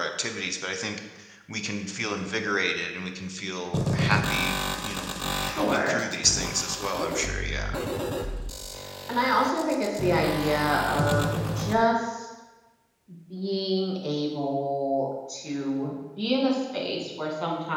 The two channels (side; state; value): both; identical; correlation 1.00